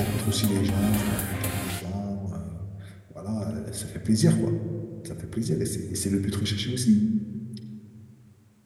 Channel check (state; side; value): identical; both; correlation 1.00